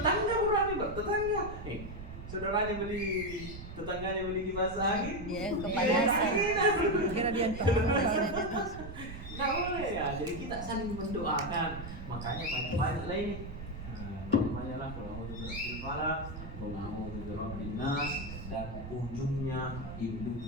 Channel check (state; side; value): noise; right; rumble, 10 dB below the sound